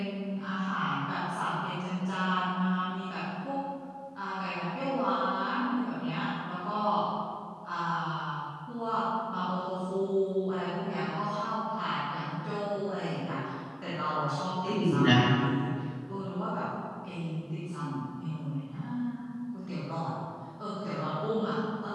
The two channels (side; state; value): both; identical; correlation 1.00